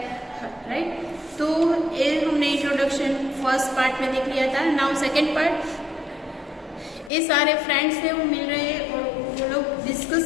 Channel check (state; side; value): drops out; right; at 7.1 s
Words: राइट? तो ये हमने इंट्रोडक्शन फर्स्ट पार्ट में देख लिया था. नाउ सेकंड पार्ट, ये सारे फ्रेंड्स हैं वो मिल रहे हैं और वो लोग डिस्कस